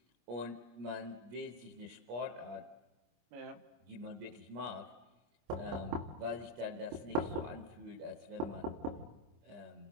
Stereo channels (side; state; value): left; late; 25 ms